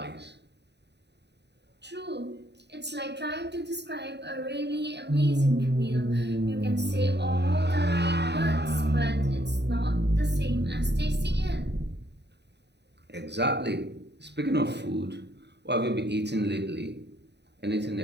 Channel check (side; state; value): left; late; 0.50 ms